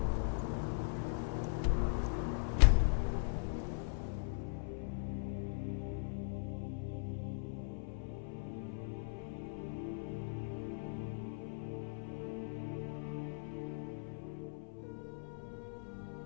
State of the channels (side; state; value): right; silent; 51 dB below the other